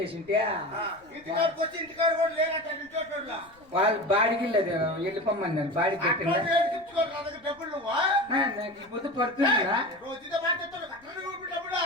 వాళ్ళు బాడికి వెళ్ళిపోమన్నారు. బాడీ పెట్టిందా నాకు పొద్దు పడుతుందా?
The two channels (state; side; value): noise; left; rumble, 29 dB below the sound